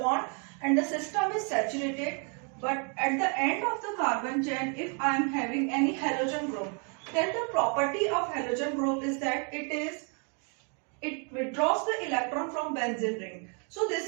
and the system is saturated, but at the end of the carbon chain, if I am having any halogen group, then the property of halogen group is that it withdraws the electron from benzene ring. So this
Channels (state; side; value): quieter; left; 38.3 dB